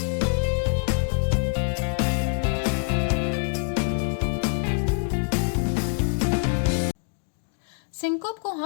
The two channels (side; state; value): right; silent; digital silence